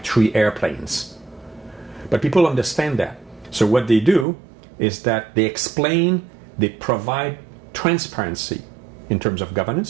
airplanes. But people understand that. So what they do is that they explain, they provide transparency in terms of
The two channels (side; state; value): left; drops out; at 4.2 s